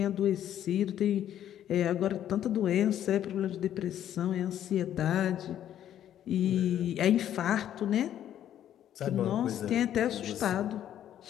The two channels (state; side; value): quieter; right; 11.0 dB